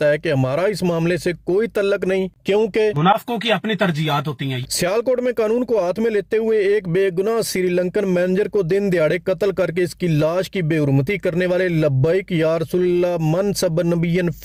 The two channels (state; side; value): identical; both; correlation 1.00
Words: है कि हमारा इस मामले से कोई तल्लक नहीं, क्योंकि मुनाफिकों की अपनी तरजीहात होती हैं। सियालकोट में कानून को हाथ में लेते हुए एक बेगुनाह श्रीलंकन मैनेजर को दिन दिहाड़े कत्ल करके इसकी लाश की बेहुरमती करने वाले लब्बैक या रसूलुल्लाह मन सब नबियन